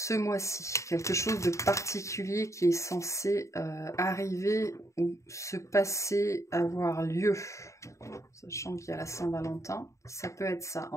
mois-ci. Quelque chose de particulier qui est censé arriver ou se passer, avoir lieu. Sachant qu'il y a la Saint-Valentin, ça peut être ça.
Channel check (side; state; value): right; late; 0.15 ms